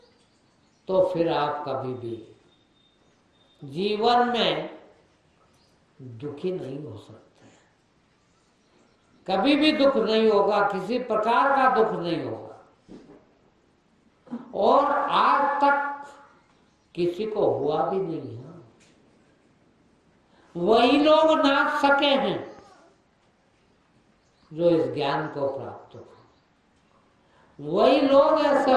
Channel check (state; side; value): identical; both; correlation 1.00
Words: तो फिर आप कभी भी जीवन में दुखी नहीं हो सकते। कभी भी दुख नहीं होगा, किसी प्रकार का दुख नहीं होगा। और आज तक किसी को हुआ भी नहीं है। वही लोग नाच सके हैं जो इस ज्ञान को प्राप्त हो। वही लोग ऐसे